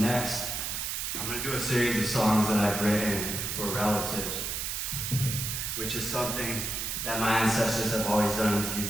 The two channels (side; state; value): right; noise; hiss, 2 dB below the sound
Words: I'm going to do a series of songs that I've written for relatives, which is something that my ancestors have always done, is